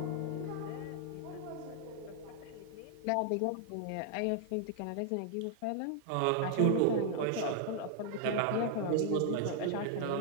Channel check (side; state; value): both; different; correlation 0.00